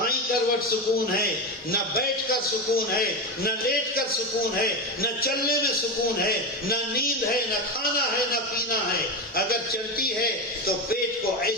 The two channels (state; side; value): normal; both; correlation 0.16